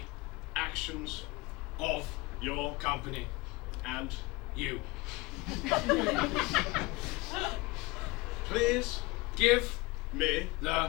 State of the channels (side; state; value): right; quieter; 22.2 dB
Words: actions of your company and you. Please give me